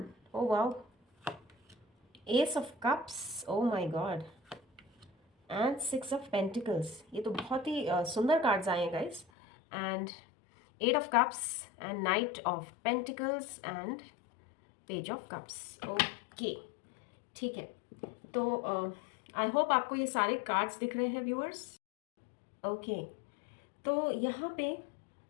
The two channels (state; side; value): drops out; right; at 9.2 s